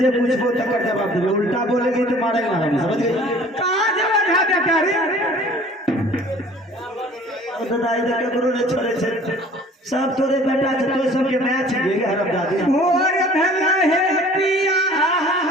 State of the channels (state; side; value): normal; both; correlation 0.50